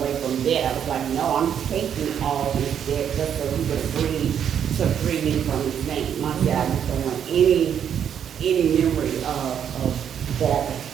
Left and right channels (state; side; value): quieter; left; 8.7 dB